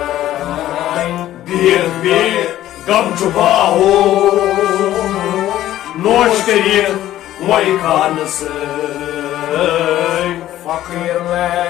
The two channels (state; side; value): quieter; right; 13.4 dB